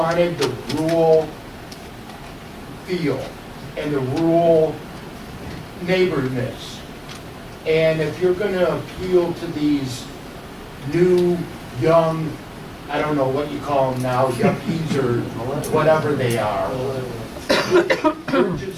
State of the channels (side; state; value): both; identical; correlation 1.00